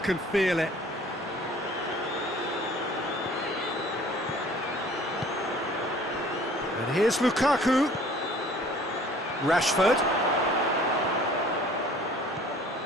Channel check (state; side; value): normal; both; correlation 0.51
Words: feel it. And here's Lukaku. Rashford.